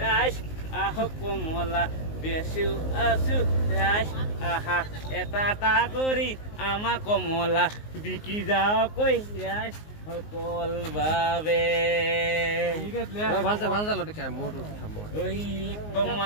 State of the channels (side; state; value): right; late; 19 ms